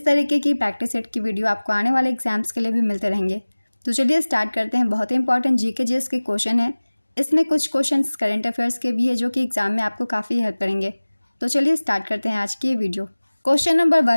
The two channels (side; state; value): both; inverted; correlation -1.00